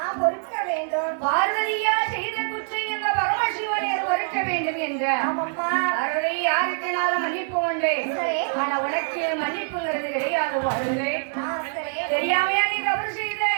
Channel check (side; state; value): left; silent; digital silence